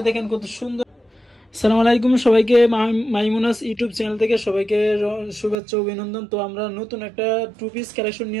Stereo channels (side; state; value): left; drops out; at 5.6 s